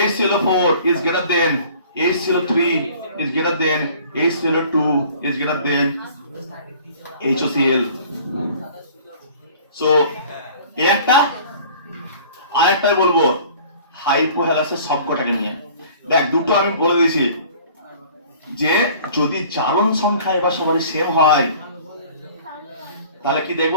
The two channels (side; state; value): both; inverted; correlation -0.49